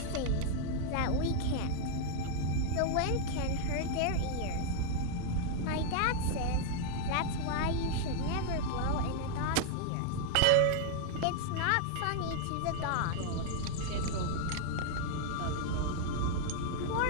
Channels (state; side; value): different; both; correlation 0.00